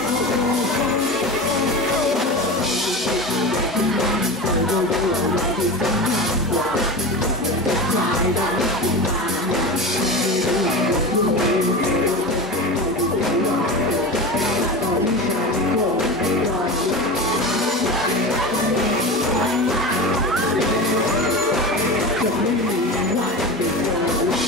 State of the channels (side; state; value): both; normal; correlation 0.26